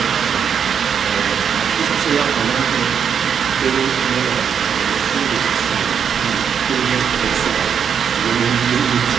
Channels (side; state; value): left; quieter; 7.4 dB